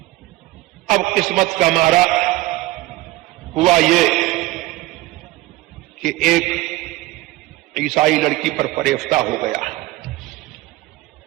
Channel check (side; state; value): left; quieter; 19.0 dB